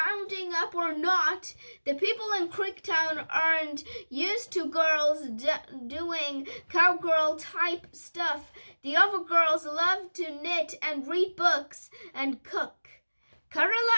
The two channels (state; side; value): inverted; both; correlation -1.00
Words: up or not. The people in Creektown aren't used to girls doing cowgirl-type stuff. The other girls love to knit and read books and cook. Kara